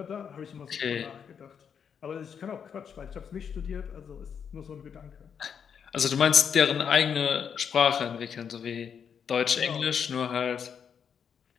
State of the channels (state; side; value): quieter; right; 7.3 dB